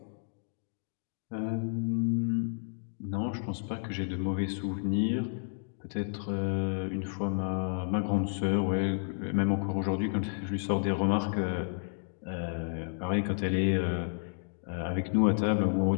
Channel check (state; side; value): silent; right; digital silence